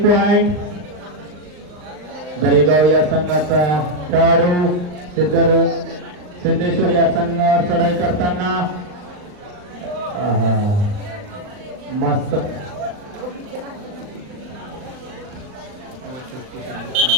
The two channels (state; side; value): late; left; 39 ms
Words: पॉइंट. दरेगाव या संघाचा खेळाडू सिद्धेश्वर या संघावर चढाई करताना मस्त